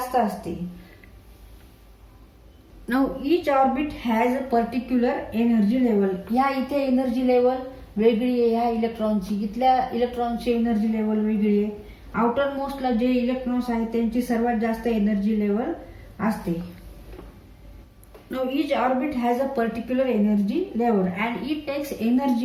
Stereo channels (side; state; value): both; identical; correlation 1.00